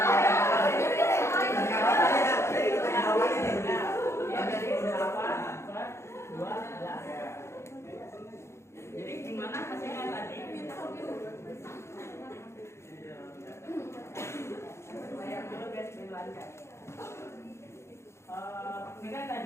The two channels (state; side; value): late; right; 0.13 ms